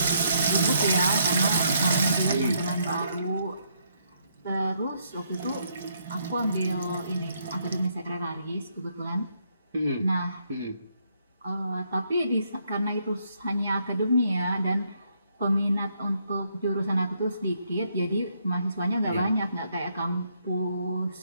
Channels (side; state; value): both; inverted; correlation -0.73